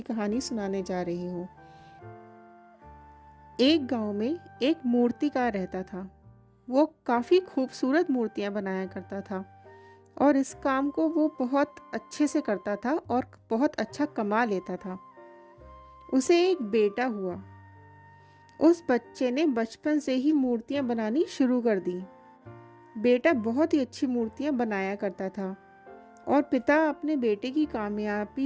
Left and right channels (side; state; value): both; identical; correlation 1.00